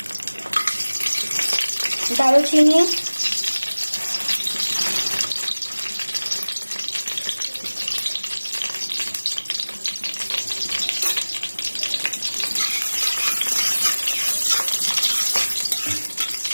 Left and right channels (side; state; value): both; inverted; correlation -1.00